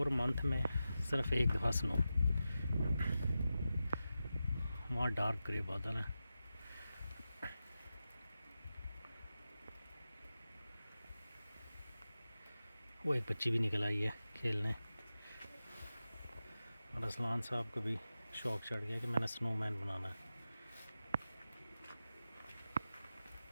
मंथ में सिर्फ एक दफ़ा स्नो। वहाँ डार्क ग्रे बादल है। वो एक बच्ची भी निकल आई है खेलने और असलान साहब को भी शौक चढ़ गया कि मैंने स्नोमैन बनाना है।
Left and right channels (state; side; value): inverted; both; correlation -0.92